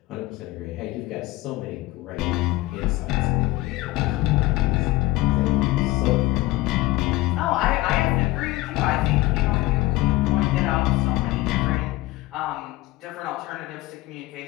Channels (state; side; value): quieter; right; 18.5 dB